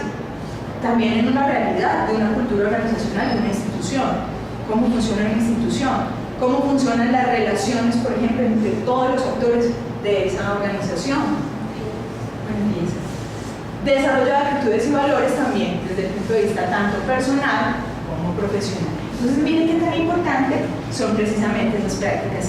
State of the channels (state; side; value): identical; both; correlation 1.00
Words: también en una realidad de una cultura organizacional de una institución, cómo funciona una institución, cómo funcionan las relaciones, por ejemplo, entre todos los actores de esa organización. Desarrollo de actitudes y valores también desde el punto de vista tanto personal como profesional. Entonces miren qué tan importante son precisamente esas